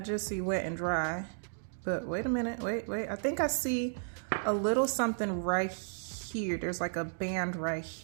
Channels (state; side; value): silent; left; digital silence